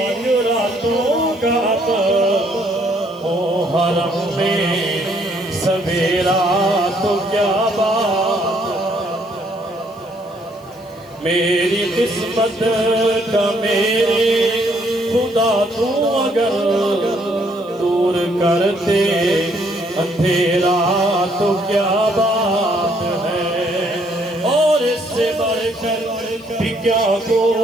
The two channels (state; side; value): noise; left; hiss, 29 dB below the sound